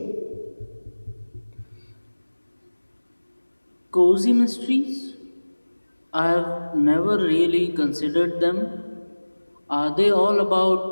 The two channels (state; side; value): inverted; both; correlation -1.00